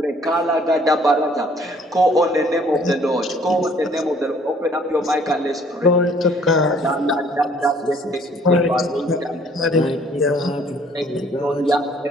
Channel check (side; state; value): both; normal; correlation 0.59